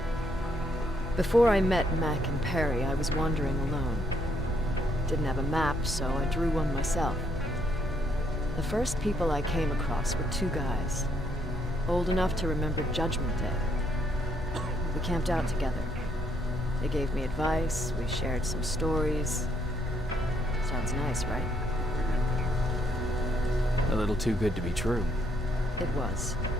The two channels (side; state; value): both; normal; correlation 0.72